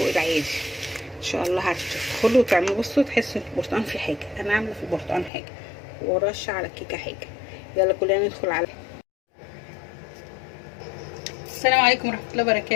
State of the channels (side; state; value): right; drops out; at 5.3 s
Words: العادي. ان شاء الله هتدخلوا وتعملوا، بصوا تحسوا البرتقال فيه حاجه، انا عامله في البرتقال حاجه ورشه على الكيكه حاجه. يلا كلنا ندخل على السلام عليكم ورحمه الله